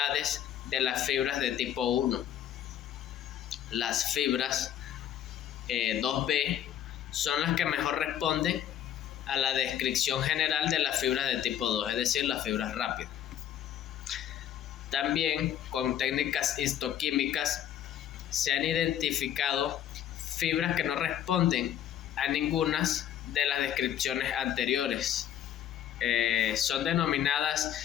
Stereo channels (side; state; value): right; quieter; 10.5 dB